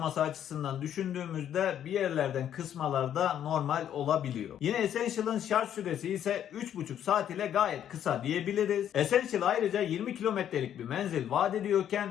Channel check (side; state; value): right; quieter; 10.1 dB